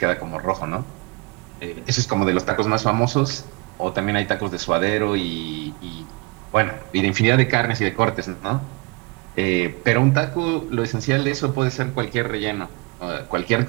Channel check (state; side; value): quieter; left; 27.6 dB